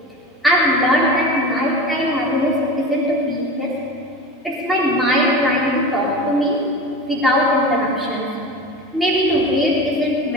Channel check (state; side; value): normal; both; correlation 0.31